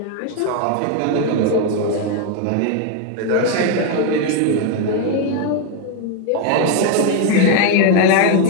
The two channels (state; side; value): different; both; correlation 0.01